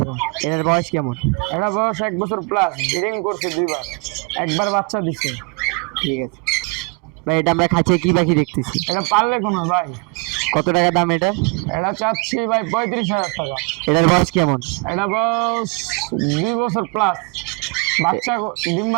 এটার বয়স কেমন? এটা বয়স 1 বছর প্লাস, ব্রিডিং করছে 2বার, একবার বাচ্চা দিচ্ছে। ঠিক আছে ভাই, এটা আমরা খাঁচিয়ে কি পাখি দেখতেছি? এটা পারলে কোনো ভাই। কত টাকা দাম এটা? এটা চাচ্ছি ভাই 35,000 টাকা। এটার বয়স কেমন? এটা বয়স 2 বছর প্লাস, বাচ্চা ডিম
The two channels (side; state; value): left; quieter; 31.7 dB